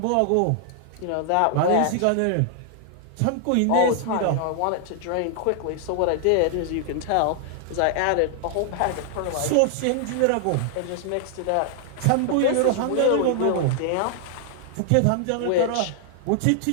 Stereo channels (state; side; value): different; both; correlation 0.00